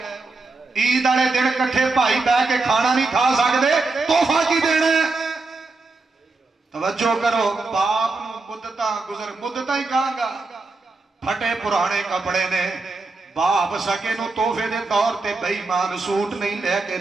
عید والے دن کٹھے بھائی بہ کے کھانا نہیں کھا سکتے، تحفہ کی دینا ہے؟ توجہ کرو، باپ نو مدتاں گزر مدتاں ہی کہاں گا، پھٹے پرانے کپڑے نے، باپ سکے نو تحفے دے طور تے بے ایمان سوٹ نہیں لے کے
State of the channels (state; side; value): quieter; left; 3.6 dB